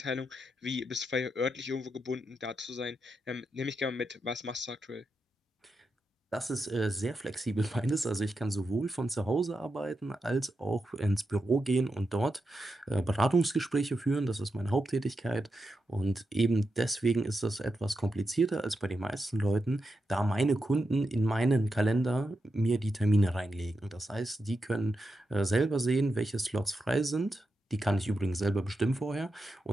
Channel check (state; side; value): normal; both; correlation 0.87